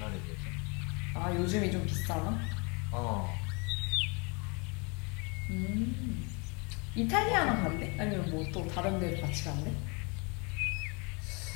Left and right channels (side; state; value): right; quieter; 31.4 dB